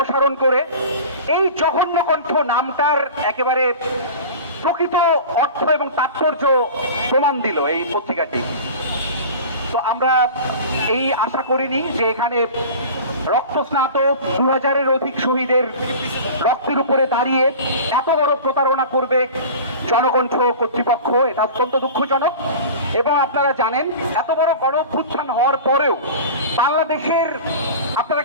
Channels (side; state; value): both; inverted; correlation -0.36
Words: করে এই জঘন্য কণ্ঠ নামটার একেবারে প্রকৃত অর্থ এবং তাৎপর্য প্রমাণ দিল এই পত্রিকাটি। তো আমরা এই আশা করিনি যে এখানে রক্তস্নাত 2000-এর অধিক শহীদের রক্তের উপরে দাঁড়িয়ে এত বড় প্রতারণা করবে জনকণ্ঠ কর্তৃপক্ষ। এটা অত্যন্ত দুঃখজনক। এবং আপনারা জানেন, এত বড় গণ অভ্যুত্থান হওয়ার পরেও বাংলাদেশের, আপনারা